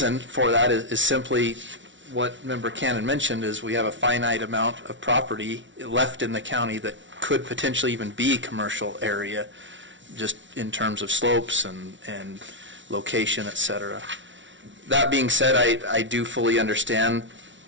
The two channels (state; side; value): late; left; 0.55 ms